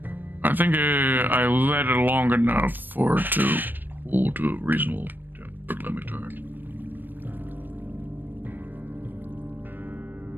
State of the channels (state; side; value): late; left; 0.092 ms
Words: I think I let it long enough for it to cool to a reasonable temperature. Let me turn.